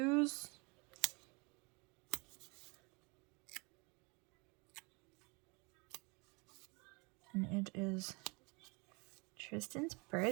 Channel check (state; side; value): quieter; left; 29.5 dB